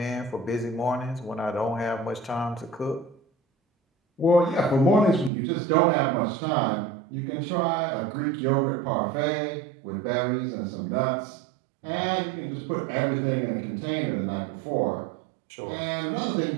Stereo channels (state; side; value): drops out; left; at 5.3 s